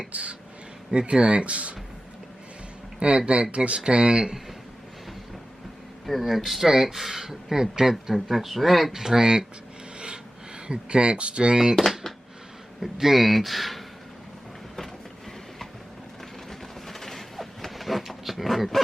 the tracks, and that dictate the strength, that's right, strength, take strength, deed.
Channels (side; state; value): both; normal; correlation 0.95